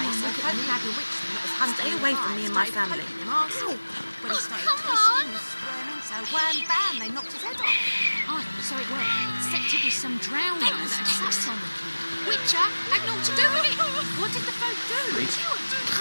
so folk had a witch that was hunting. Stay away from me and my family. When he started twisting and squirming, so wham bam, they knocked his head off. Oh, so it worked. Except it was some drowning that had sat on the kid. Witcher had naught to do with it. What did the folk do? Wait.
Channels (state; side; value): inverted; both; correlation -1.00